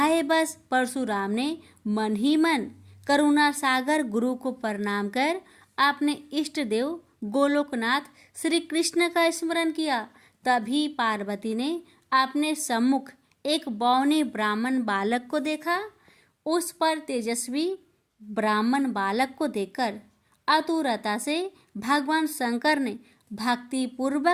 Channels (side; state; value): both; identical; correlation 1.00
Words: बस परशुराम ने मन ही मन करुणा सागर गुरु को प्रणाम कर अपने इष्ट देव गोलोकनाथ श्री कृष्ण का स्मरण किया। तभी पार्वती ने अपने सम्मुख एक बौने ब्राह्मण बालक को देखा। उस पर तेजस्वी ब्राह्मण बालक को देखकर आतुरता से भगवान शंकर ने भक्ति